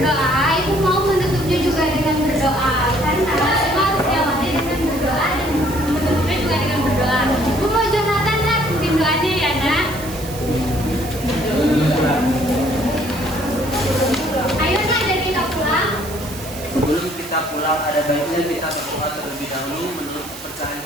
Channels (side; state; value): right; noise; hiss, 14 dB below the sound